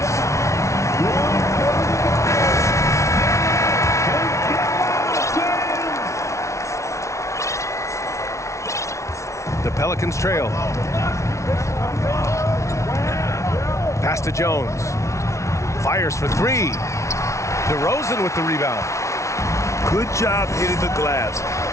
The Pelicans trail. Pass to Jones. Fires for three. DeRozan with the rebound. Good job hitting the glass.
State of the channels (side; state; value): right; late; 0.14 ms